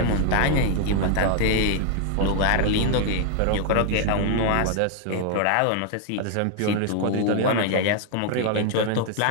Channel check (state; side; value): different; both; correlation 0.00